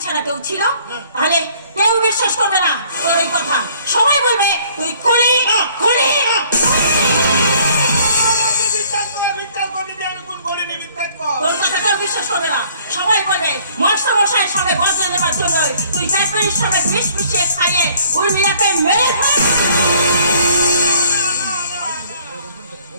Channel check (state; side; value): inverted; both; correlation -0.59